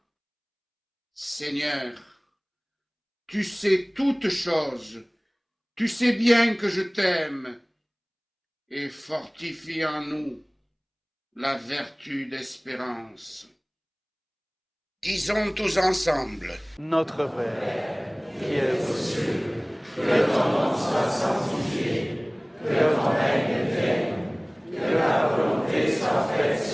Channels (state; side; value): identical; both; correlation 1.00